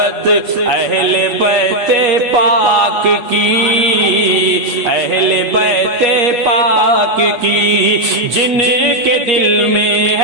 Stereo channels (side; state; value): left; late; 8.4 ms